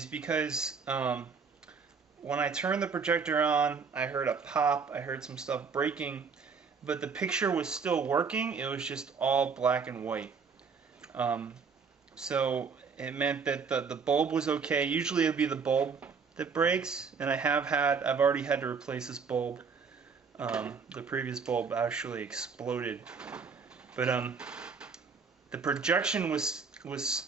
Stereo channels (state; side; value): quieter; left; 5.5 dB